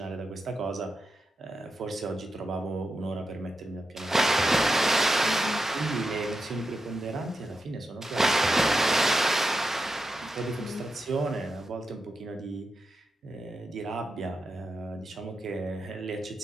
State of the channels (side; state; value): both; normal; correlation 0.88